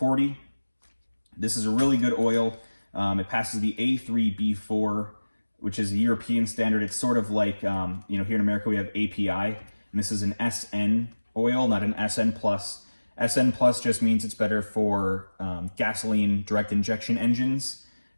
This is a really good oil. It passes the A3B4, which is a European standard. It's sort of like, you know, here in America we have API, and this is an SN oil, not an SN+. SN+ just means it's better for gasoline direct injection engines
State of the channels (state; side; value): inverted; both; correlation -1.00